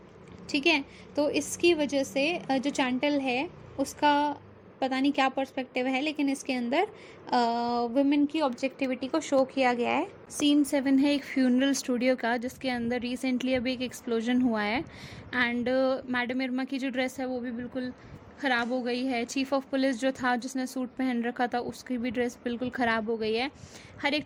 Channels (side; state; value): both; identical; correlation 1.00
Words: ठीक है, तो इसकी वजह से जो चैंटल है उसका पता नहीं क्या पर्सपेक्टिव है, लेकिन इसके अंदर वुमेन की ऑब्जेक्टिविटी को शो किया गया है। सीन 7 है एक फ्यूनरल स्टूडियो का, जिसके अंदर रिसेंटली अभी एक एक्सप्लोजन हुआ है एंड मैडम इरमा की जो ड्रेस है वो भी बिल्कुल ख़राब हो गई है। चीफ ऑफ पुलिस जो था जिसने सूट पहन रखा था उसकी भी ड्रेस बिल्कुल ख़राब हो गई है। हर एक